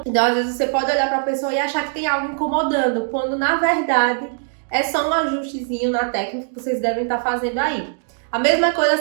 Então, às vezes você pode olhar para a pessoa e achar que tem algo incomodando, quando na verdade é só um ajustezinho na técnica que vocês devem estar fazendo aí. A mesma coisa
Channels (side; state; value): left; silent; digital silence